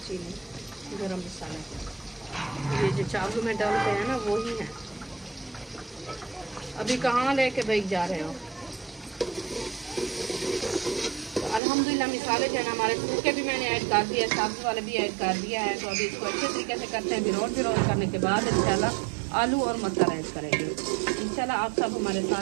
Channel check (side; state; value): left; drops out; at 11.6 s